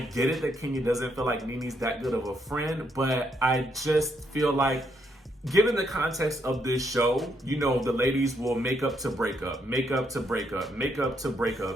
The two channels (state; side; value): normal; both; correlation 0.75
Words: it that Kenya doesn't feel like Nene's that good of a friend, but I just feel like, given the context of this show, you know, the ladies will make up to break up, make up to break up, make up to break